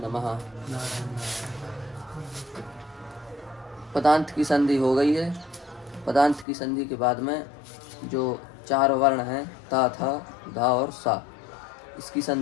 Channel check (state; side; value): drops out; right; at 6.5 s